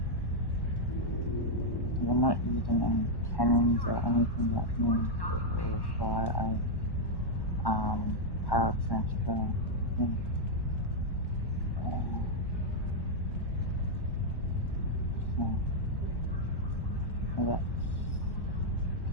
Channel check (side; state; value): right; late; 1.1 ms